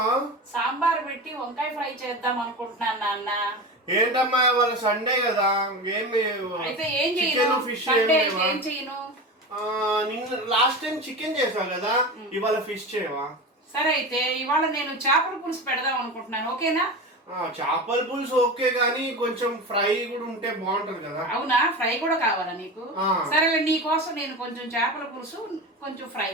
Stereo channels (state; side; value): normal; both; correlation 0.26